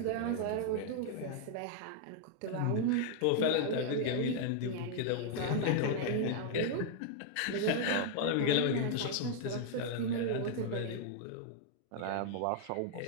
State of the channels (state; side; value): different; both; correlation 0.00